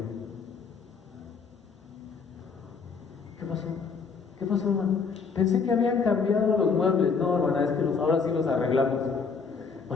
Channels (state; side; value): quieter; right; 5.3 dB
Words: ¿qué pasó? ¿Qué pasó, hermano? Pensé que habían cambiado los muebles. No, hermana, es que ahora sí los arreglamos.